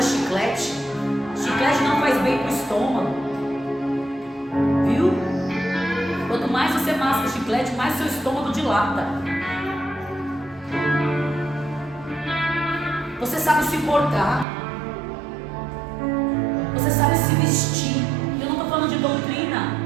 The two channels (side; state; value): left; drops out; at 14.5 s